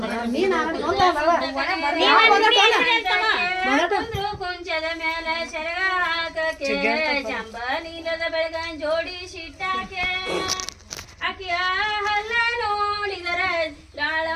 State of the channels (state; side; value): identical; both; correlation 1.00